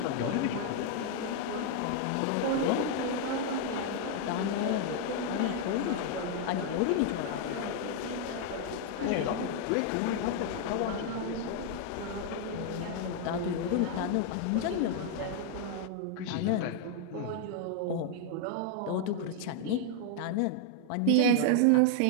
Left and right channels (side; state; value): both; different; correlation 0.00